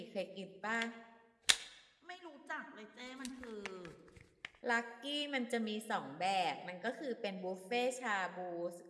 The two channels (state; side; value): identical; both; correlation 1.00